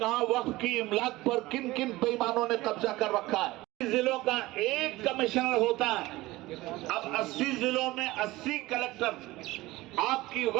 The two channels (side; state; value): left; quieter; 19.0 dB